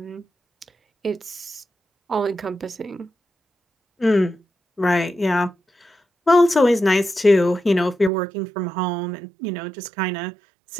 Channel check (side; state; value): left; drops out; at 8.1 s